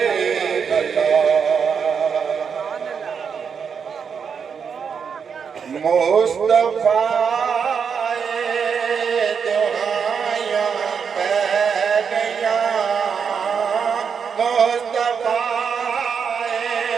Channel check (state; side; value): quieter; left; 6.5 dB